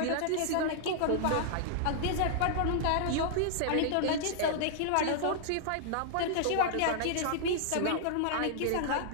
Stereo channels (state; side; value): different; both; correlation -0.01